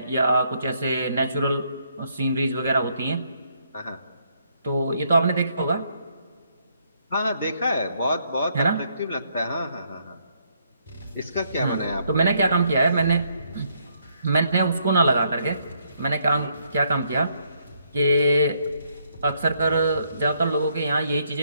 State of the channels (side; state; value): both; inverted; correlation -0.72